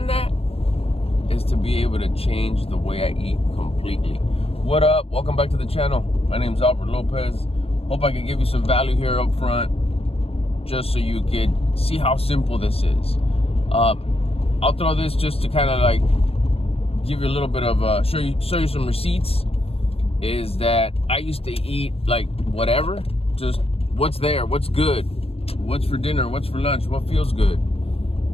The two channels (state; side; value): late; right; 0.28 ms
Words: that is to be able to change the way I eat completely. What up? Welcome back to the channel. My name is Albert Lopez. Hope I can give you some value here up front, just so you could see how simple this is. I'll throw this just to kind of like give you a little bit of show you some receipts. Is that I used to eat like whatever, just what's there, what's good, what's for dinner, what's for lunch, what feels good.